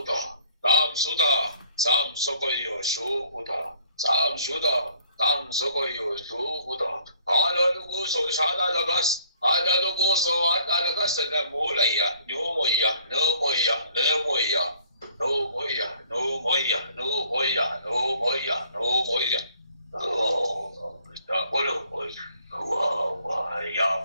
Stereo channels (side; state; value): both; inverted; correlation -0.60